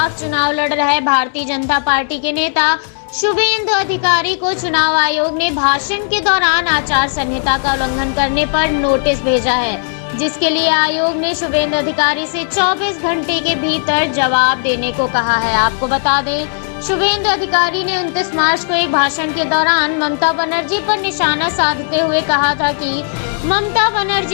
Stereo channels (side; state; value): right; silent; 68 dB below the other